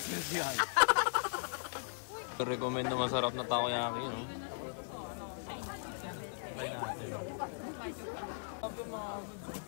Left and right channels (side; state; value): right; silent; digital silence